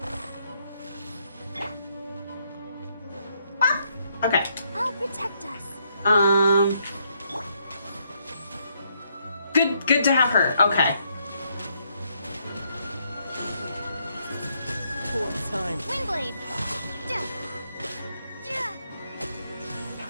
Okay. I'll protect us. Good to have her. Okay. Poor time. Windblade.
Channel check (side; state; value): both; inverted; correlation -0.74